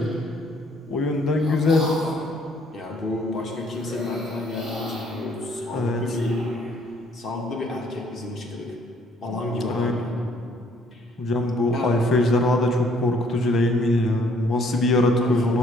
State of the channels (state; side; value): normal; both; correlation 0.63